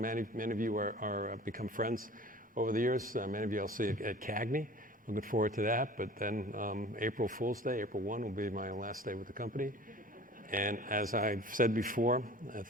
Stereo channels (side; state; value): both; normal; correlation 0.43